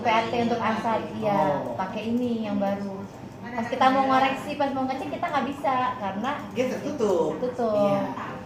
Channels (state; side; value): identical; both; correlation 1.00